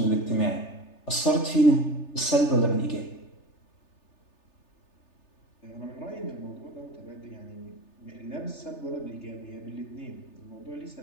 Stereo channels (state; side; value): late; right; 3.3 ms